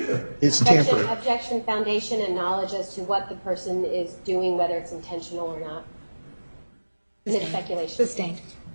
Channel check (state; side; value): inverted; both; correlation -1.00